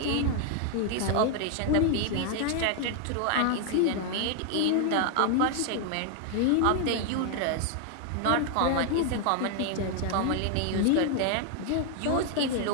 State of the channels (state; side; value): different; both; correlation 0.00